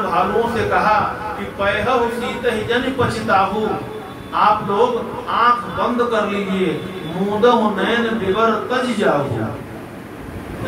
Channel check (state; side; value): identical; both; correlation 1.00